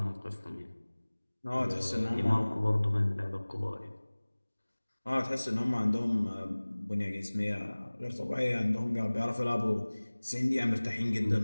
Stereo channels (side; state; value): both; inverted; correlation -1.00